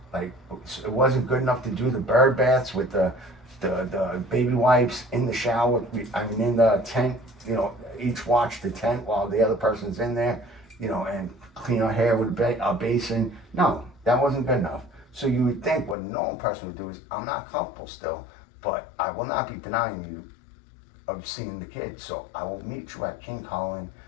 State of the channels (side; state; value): right; drops out; at 16.0 s